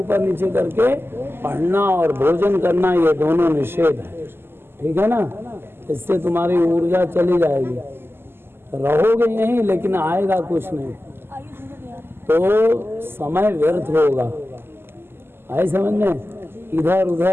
नीचे करके पढ़ना और भोजन करना ये दोनों निषेध है, ठीक है ना? इससे तुम्हारी ऊर्जा चली जाएगी, रहोगे यहीं लेकिन आएगा कुछ नहीं, तो समय व्यर्थ होगा। आए समझ में? इधर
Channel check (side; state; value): left; late; 0.11 ms